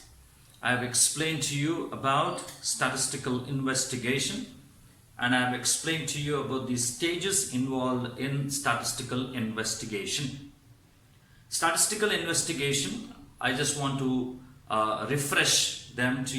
I have explained to you about statistical investigation and I have explained to you about the stages involved in statistical investigation. Statistical investigation, I just want to refresh them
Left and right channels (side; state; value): both; identical; correlation 1.00